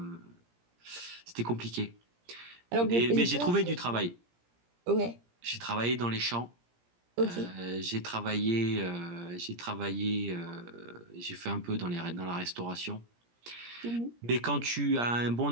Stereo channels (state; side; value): late; left; 17 ms